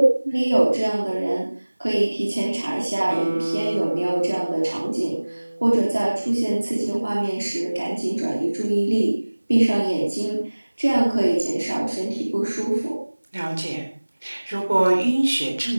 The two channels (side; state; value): both; inverted; correlation -1.00